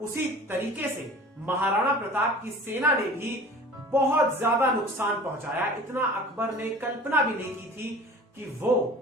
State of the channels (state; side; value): normal; both; correlation 0.42